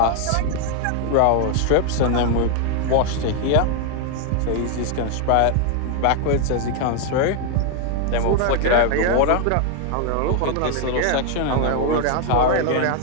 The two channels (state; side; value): different; both; correlation 0.00